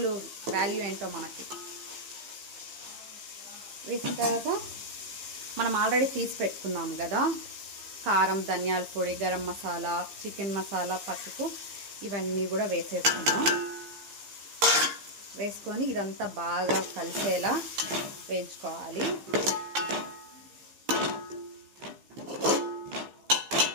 వాల్యూ ఏంటో మనకి. వేసిన తర్వాత మనం ఆల్రెడీ తీసి పెట్టుకున్నాం కదా కారం, ధనియాల పొడి, గరం మసాలా, చికెన్ మసాలా, పసుపు ఇవన్నీ కూడా వేసేసుకున్నాం. వేసుకొని ఇదంతా బాగా కలిసేలా వేయించుకోవాలి.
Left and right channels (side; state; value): left; late; 15 ms